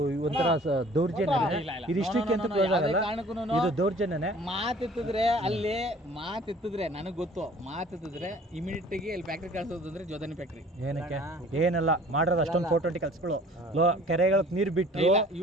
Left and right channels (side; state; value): both; normal; correlation 0.51